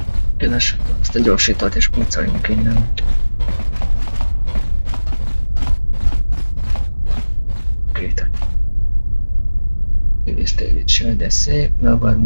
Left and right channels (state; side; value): inverted; both; correlation -1.00